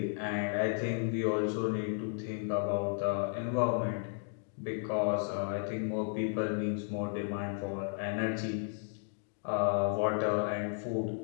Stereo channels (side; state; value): right; silent; 55 dB below the other